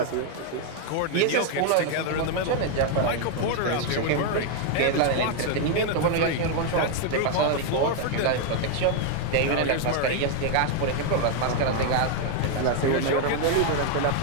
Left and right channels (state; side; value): different; both; correlation 0.00